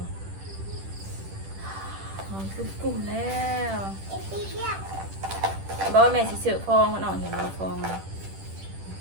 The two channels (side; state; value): left; late; 10 ms